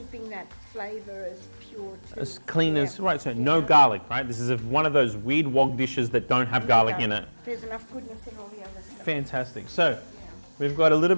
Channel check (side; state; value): both; inverted; correlation -1.00